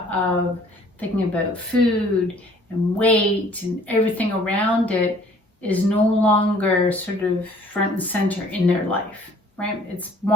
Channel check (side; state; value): both; normal; correlation 0.56